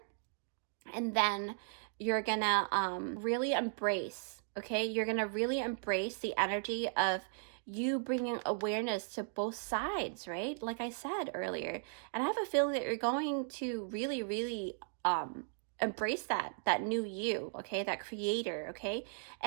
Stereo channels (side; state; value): left; silent; digital silence